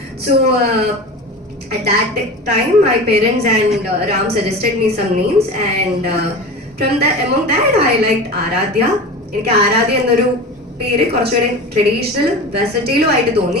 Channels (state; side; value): normal; both; correlation 0.31